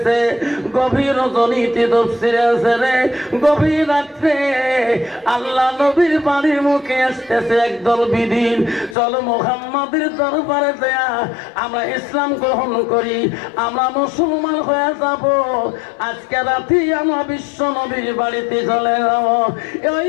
গভীর রজনীতে তফসিরে আছে রে, গভীর রাত্রে আল্লাহ নবীর বাড়ির মুখে আসতেছে একদল বিদিন। চলো মুহাম্মাদের দরবারে দেয়া আমরা ইসলাম গ্রহণ করি, আমরা মুসলমান হয়ে যাব। আজকে রাতে আমরা বিশ্ব নবীর বাড়িতে চলে যাব। ওই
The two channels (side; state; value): right; drops out; at 9.0 s